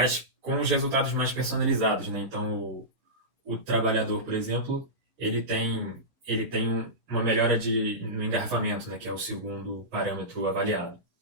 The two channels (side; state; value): left; late; 7.9 ms